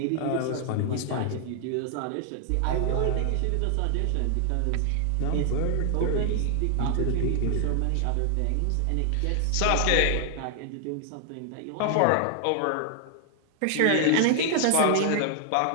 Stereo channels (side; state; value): both; different; correlation 0.00